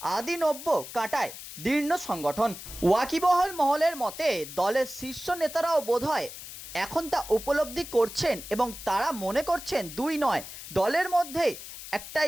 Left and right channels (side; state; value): left; noise; hiss, 12 dB below the sound